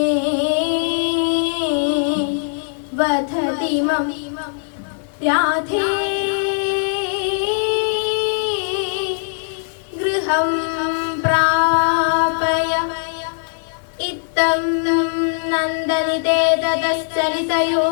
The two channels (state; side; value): silent; right; 57 dB below the other